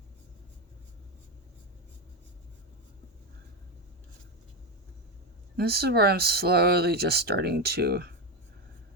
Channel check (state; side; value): normal; both; correlation 0.11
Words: This is where I'm slowly just starting to